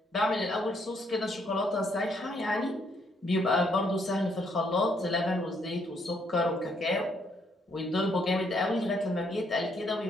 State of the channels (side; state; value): both; normal; correlation 0.71